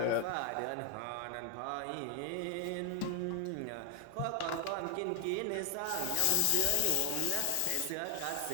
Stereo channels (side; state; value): both; different; correlation 0.00